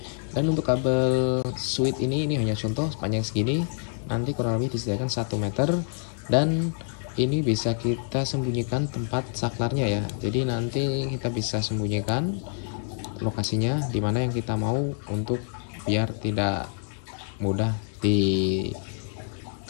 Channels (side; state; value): right; silent; digital silence